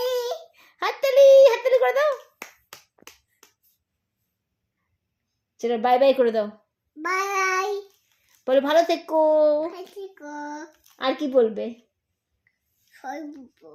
হাততালি, হাততালি করে দাও। চলো বাই বাই করে দাও। বাই বলে ভালো থেকো। হাতিকো আর কি বলবে? সরবো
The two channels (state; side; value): identical; both; correlation 1.00